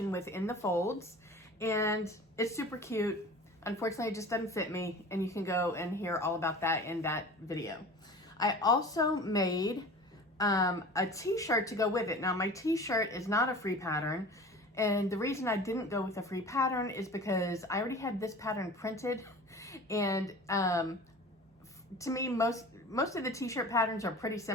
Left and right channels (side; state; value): both; normal; correlation 0.39